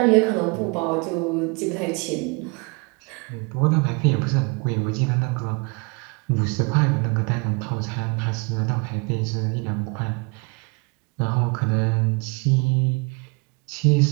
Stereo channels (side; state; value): left; quieter; 30.5 dB